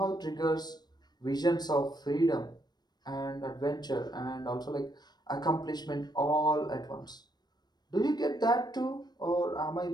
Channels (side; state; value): right; late; 0.20 ms